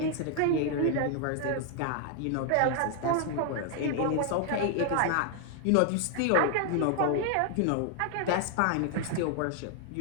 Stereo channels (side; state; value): both; different; correlation 0.00